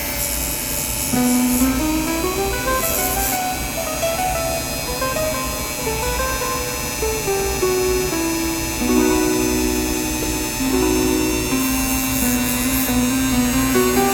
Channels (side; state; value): both; identical; correlation 1.00